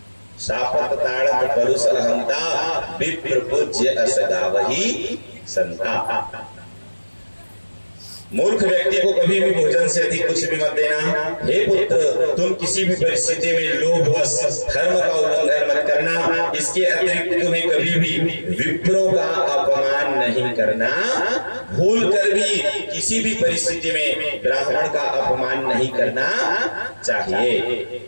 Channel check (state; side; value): inverted; both; correlation -1.00